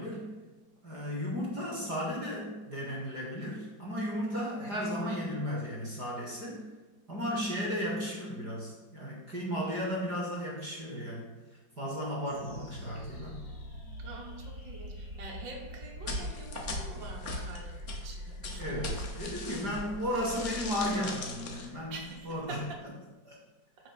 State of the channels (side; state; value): left; late; 4.9 ms